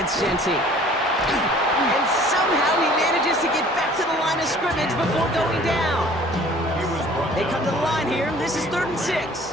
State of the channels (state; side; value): normal; both; correlation 0.51